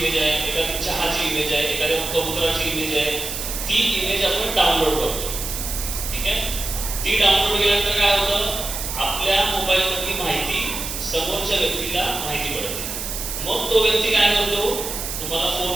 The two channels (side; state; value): right; noise; hiss, 5 dB below the sound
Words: आहे, एखादी चहाची इमेज आहे, एखाद्या कबुतराची इमेज आहे, ती इमेज आपण डाउनलोड करतो. ठीक आहे. ती डाउनलोड केल्यानंतर काय होतं, आपल्या मोबाईलमधली माहिती समोरच्या व्यक्तीला माहिती पडते. मग तो व्यक्ती काय करतो, तुम्हाला